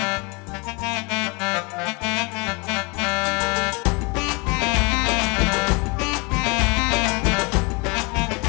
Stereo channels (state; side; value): quieter; right; 29.1 dB